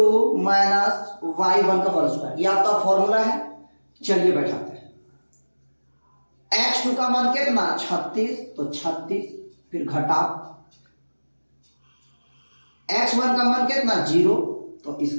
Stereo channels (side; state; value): both; inverted; correlation -1.00